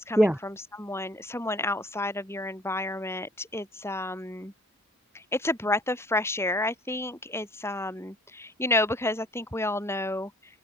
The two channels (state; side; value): normal; both; correlation 0.55